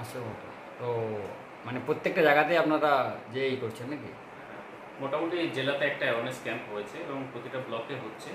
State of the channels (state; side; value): identical; both; correlation 1.00